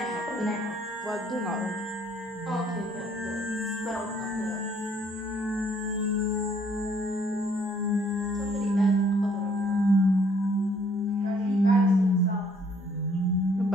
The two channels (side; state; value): both; normal; correlation 0.63